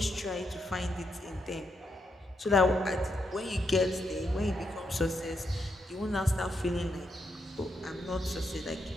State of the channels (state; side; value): normal; both; correlation 0.81